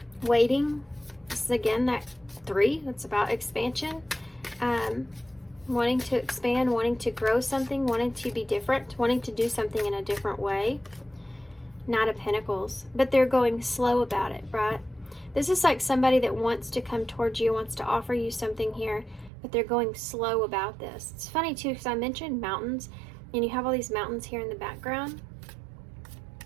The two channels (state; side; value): drops out; left; at 19.3 s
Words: waiting. This is again that 3, that's about expansion, wanting to expand, wanting to grow something, wanting to be different, wanting to do something in a different way. Knight of Pentacles, but they're going slow about it, right? This is like somebody that wants to come towards you, wants to offer you something here, but they're going slow about this. It's funny too, because I mentioned mountains, and you have all these mountains here in the background.